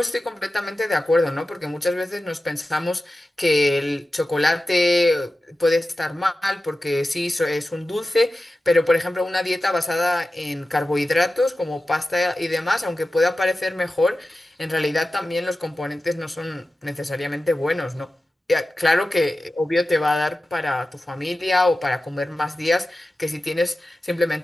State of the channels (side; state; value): both; normal; correlation 0.94